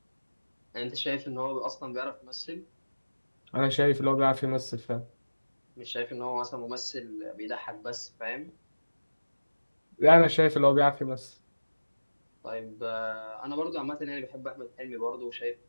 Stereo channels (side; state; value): both; inverted; correlation -1.00